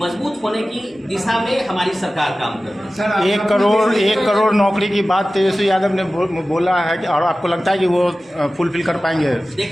होने की दिशा में हमारी सरकार काम कर रही है। 1 करोड़ नौकरी की बात तेजस्वी यादव ने बोला है कि, और आपको लगता है कि वो फुलफिल कर पाएंगे?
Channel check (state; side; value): normal; both; correlation 0.96